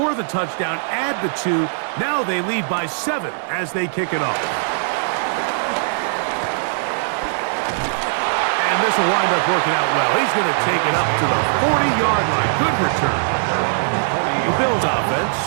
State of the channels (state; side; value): silent; left; 66 dB below the other